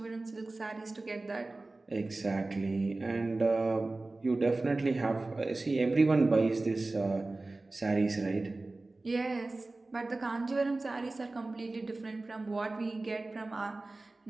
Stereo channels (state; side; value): quieter; left; 3.1 dB